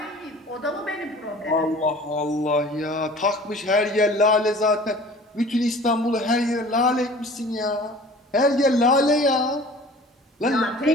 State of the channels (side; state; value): both; normal; correlation 0.45